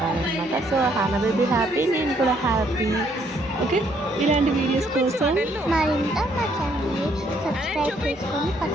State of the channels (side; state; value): both; normal; correlation 0.68